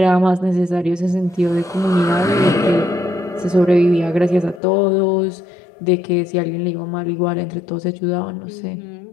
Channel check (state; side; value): drops out; right; at 4.6 s